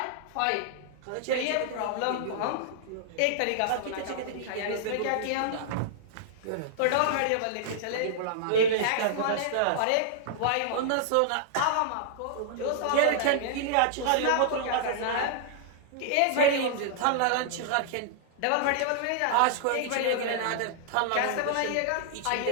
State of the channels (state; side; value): different; both; correlation -0.01